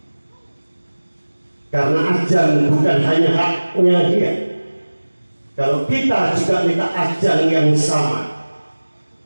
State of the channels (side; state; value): both; inverted; correlation -1.00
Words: Karena ajang bukan hanya haknya dia. Kalau kita juga minta ajang yang sama,